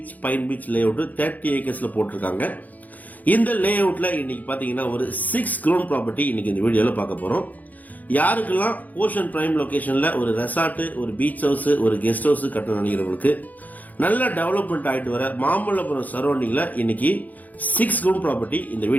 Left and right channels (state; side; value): late; right; 0.080 ms